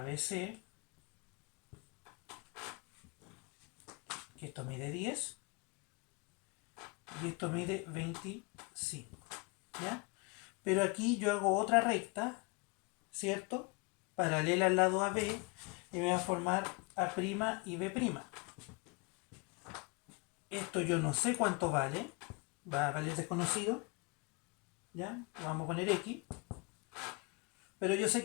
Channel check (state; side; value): quieter; right; 29.1 dB